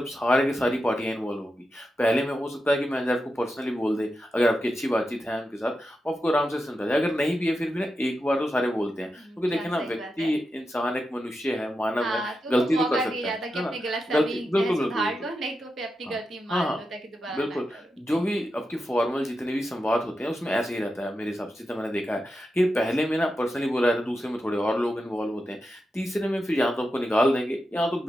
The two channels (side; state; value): both; normal; correlation 0.89